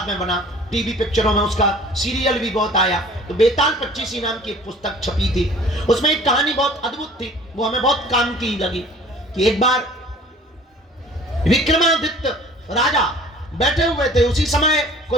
में बना, टीवी पिक्चरों में उसका सीरियल भी बहुत आया। तो बेताल पच्चीसी नाम की एक पुस्तक छपी थी। उसमें एक कहानी बहुत अद्भुत थी, वो हमें बहुत काम की लगी कि एक बार विक्रमादित्य राजा बैठे हुए थे। उसी समय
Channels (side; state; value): both; normal; correlation 0.49